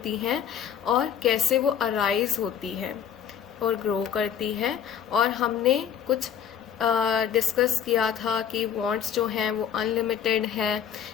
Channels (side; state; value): right; quieter; 8.8 dB